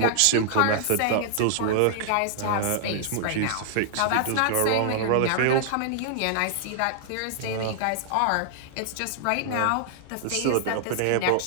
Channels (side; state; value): both; different; correlation -0.01